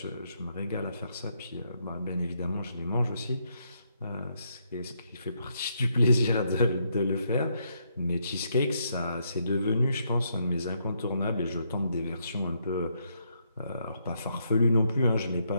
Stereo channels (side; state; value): both; inverted; correlation -0.76